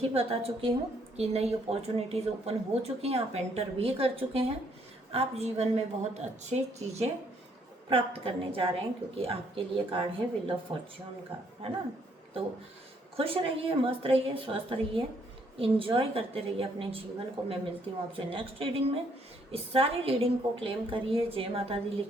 बता चुकी हूँ कि नई अपॉर्चुनिटीज़ ओपन हो चुकी हैं, आप एंटर भी कर चुके हैं, आप जीवन में बहुत अच्छी चीज़ें प्राप्त करने जा रहे हैं, क्योंकि आपके लिए कार्ड है व्हील ऑफ फॉर्च्यून का, है ना। तो खुश रहिए, मस्त रहिए, स्वस्थ रहिए, इंजॉय करते रहिए अपने जीवन को। मैं मिलती हूँ आपसे नेक्स्ट रीडिंग में। इस सारी रीडिंग को क्लेम करिए, जय माता दी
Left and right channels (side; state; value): both; normal; correlation 0.68